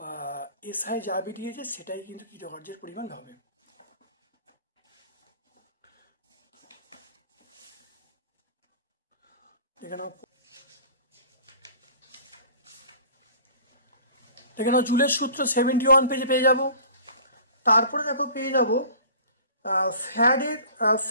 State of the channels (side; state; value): both; inverted; correlation -0.46